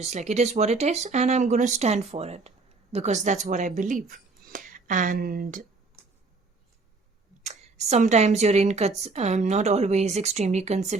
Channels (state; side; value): quieter; left; 3.8 dB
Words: like, it is what it is, and I'm going to stand for it because that's what I believe. And sometimes you're not always extremely